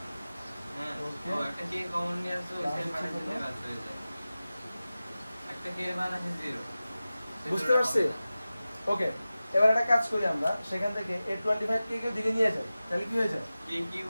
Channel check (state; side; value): inverted; both; correlation -0.96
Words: হ্যাঁ, ওকে। ও একটা কে কমন নিয়ে আসো, প্লাস সেই হচ্ছে মানে কত? দিলে বাদ হয়ে যায়। একটা কে মান আছে 0। বুঝতে পারছি? ওকে, এবার একটা কাজ করি আমরা, সেখান থেকে এই 25k কে দিকে নিয়ে যাই, তাহলে কি হয়ে যায়, k